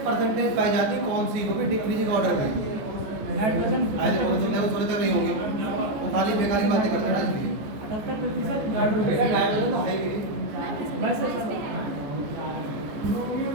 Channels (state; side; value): late; left; 14 ms